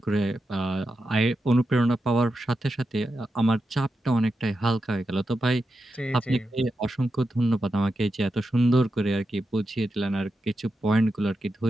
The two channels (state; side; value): normal; both; correlation 0.88